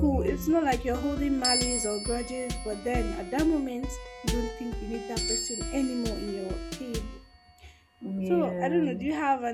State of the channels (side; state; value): both; identical; correlation 1.00